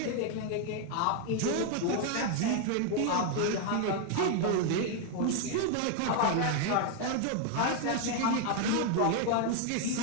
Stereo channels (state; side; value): different; both; correlation 0.01